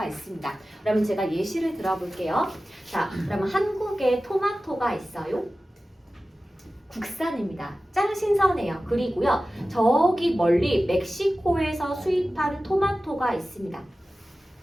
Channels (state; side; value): normal; both; correlation 0.95